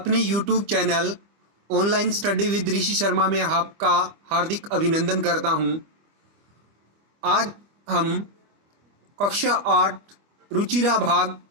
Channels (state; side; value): late; left; 25 ms